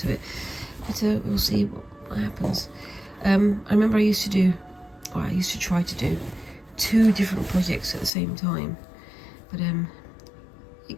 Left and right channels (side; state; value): right; drops out; at 8.1 s